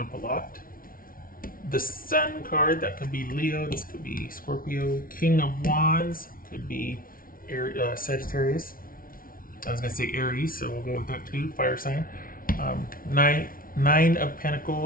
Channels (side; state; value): right; late; 0.42 ms